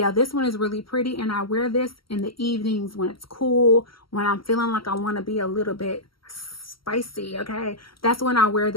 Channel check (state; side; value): late; right; 0.74 ms